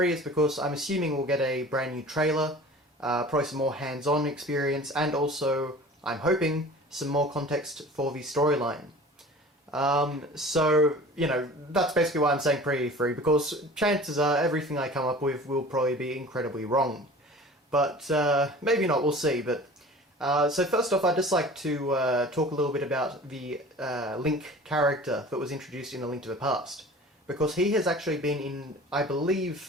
is because I'm assuming we'll get a brand new trailer, probably some more hands-on experience, and also, I'm hoping, some more context for the storyline. That's basically why I'm saying pre-E3, because chances are everything I come up with will probably be incredibly wrong. But maybe not, we'll see. So first off, I'd just like to talk a little bit about the Link character that was introduced in A Link to the Past. Because he has actually been in, I believe,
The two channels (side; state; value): both; normal; correlation 0.42